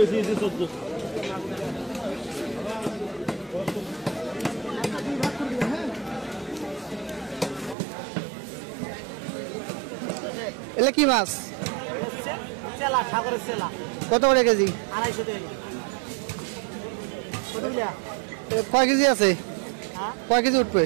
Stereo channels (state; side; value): drops out; left; at 7.8 s